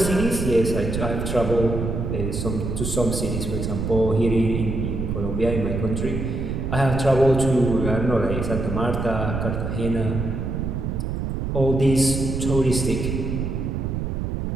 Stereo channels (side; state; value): right; noise; rumble, 2 dB below the sound